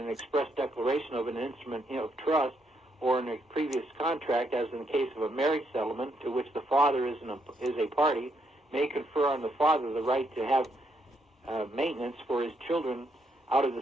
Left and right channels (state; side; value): normal; both; correlation 0.75